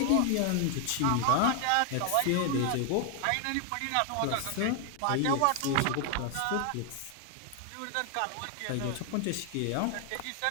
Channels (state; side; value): different; both; correlation 0.00